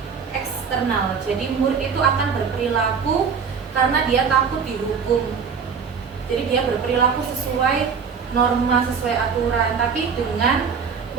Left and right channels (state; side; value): quieter; left; 6.1 dB